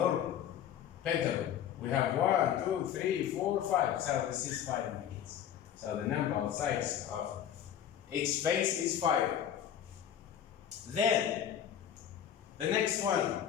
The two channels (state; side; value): quieter; right; 9.7 dB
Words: pentagon? We have 1, 2, 3, 4, 5. So this is 5 units. So the number of sides of each face is 5. Then the next one.